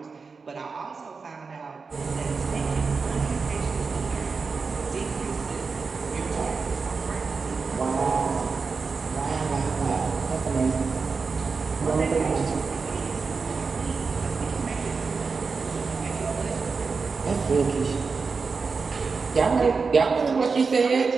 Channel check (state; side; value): quieter; left; 4.8 dB